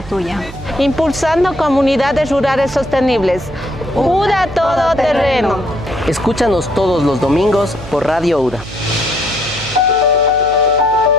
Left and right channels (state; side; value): noise; right; hum, 15 dB below the sound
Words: tuya. Impulsando comunidades rurales sostenibles. UDA Todoterreno. Escúchanos todos los domingos por Radio UDA.